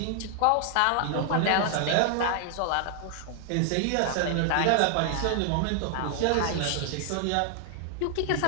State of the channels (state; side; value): different; both; correlation 0.00